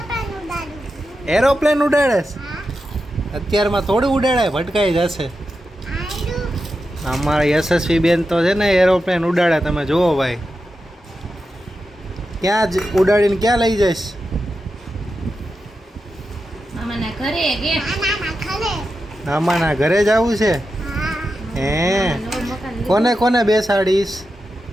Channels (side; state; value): both; normal; correlation 0.89